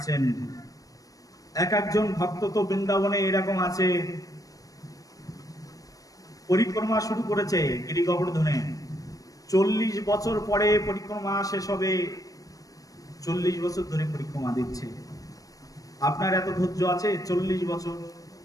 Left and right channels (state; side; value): late; right; 0.17 ms